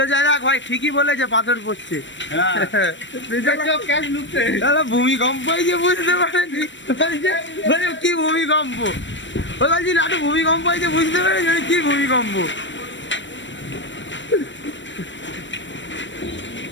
যায়। দেখ ভাই ঠিকই বলেছে, পাথর পড়ছে। ভূমিকম্প হয়েছে, বুঝতে পারেনি কি ভূমিকম্প। ও বলছি লাটু ভূমিকম্প হয়েছে, বুঝতে পেরেছি কি ভূমিকম্প।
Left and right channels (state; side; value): late; right; 0.54 ms